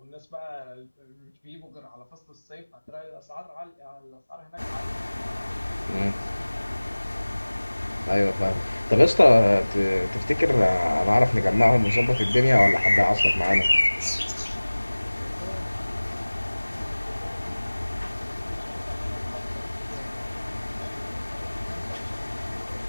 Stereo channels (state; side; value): inverted; both; correlation -1.00